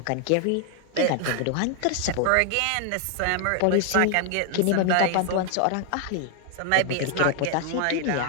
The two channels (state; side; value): different; both; correlation 0.00